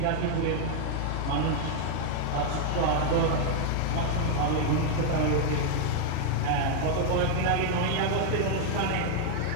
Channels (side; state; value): both; different; correlation 0.00